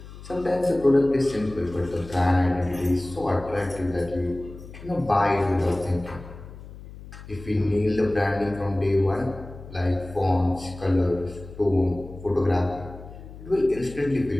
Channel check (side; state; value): left; noise; hum, 15 dB below the sound